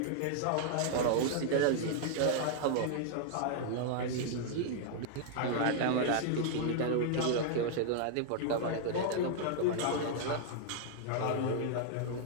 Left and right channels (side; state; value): both; different; correlation -0.01